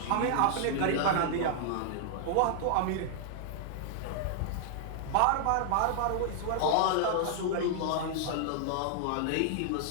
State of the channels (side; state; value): both; different; correlation -0.01